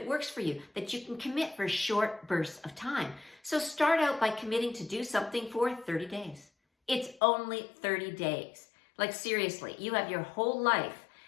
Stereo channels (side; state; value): right; drops out; at 7.2 s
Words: works for you, that you can commit for short bursts of time. So start out by committing to do something for 30 days. It's only 30 days. Like seriously, you have your whole life